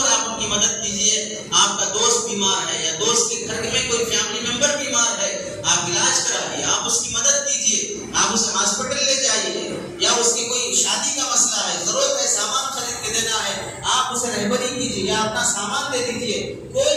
آپ ان کی مدد کیجیے. آپ کا دوست بیمار ہے یا دوست کے گھر میں کوئی فیملی ممبر بیمار ہے, آپ علاج کرائیے, آپ اس کی مدد کیجیے, آپ اسے ہاسپٹل لے جائیے, یا اس کی کوئی شادی کا مسئلہ ہے, ضرورت ہے, سامان خرید کے دینا ہے, آپ اسے رہبری کیجیے یا اپنا سامان دے دیجیے.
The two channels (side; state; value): both; identical; correlation 1.00